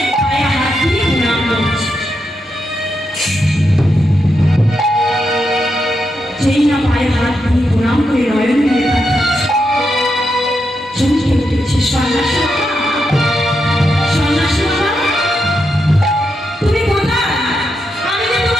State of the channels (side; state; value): both; normal; correlation 0.84